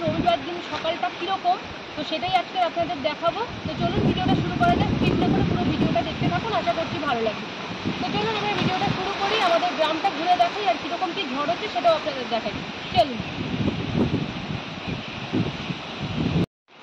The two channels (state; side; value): identical; both; correlation 1.00